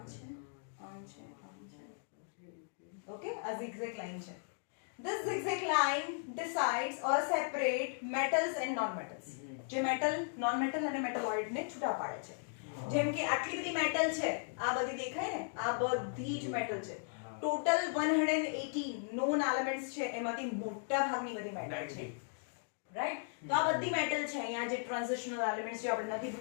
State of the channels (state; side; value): silent; right; digital silence